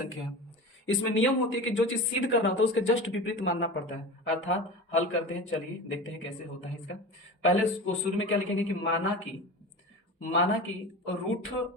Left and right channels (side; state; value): both; normal; correlation 0.31